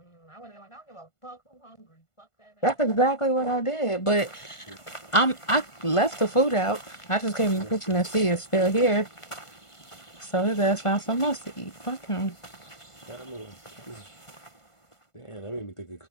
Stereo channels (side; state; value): right; late; 1.5 ms